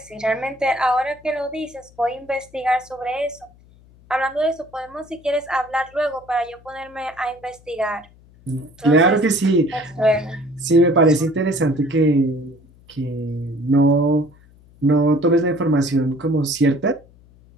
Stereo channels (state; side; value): noise; left; hum, 27 dB below the sound